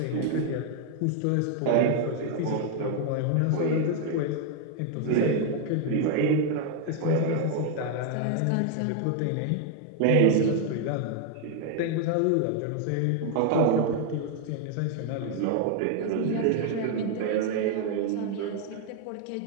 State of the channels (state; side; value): different; both; correlation 0.00